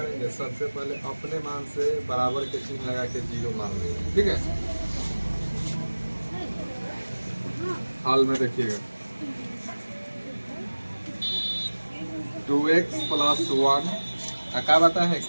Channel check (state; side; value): inverted; both; correlation -1.00